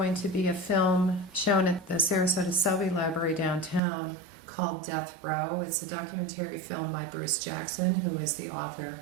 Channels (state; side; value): drops out; left; at 3.8 s